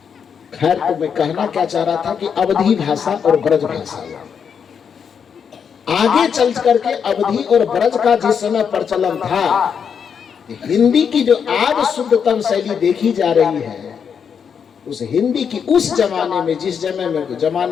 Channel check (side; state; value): right; quieter; 7.0 dB